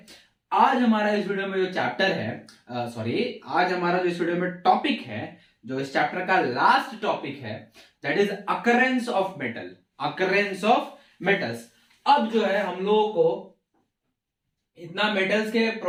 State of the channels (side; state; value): both; identical; correlation 1.00